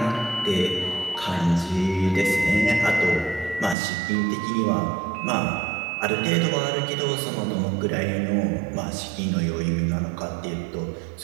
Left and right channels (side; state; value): left; drops out; at 3.8 s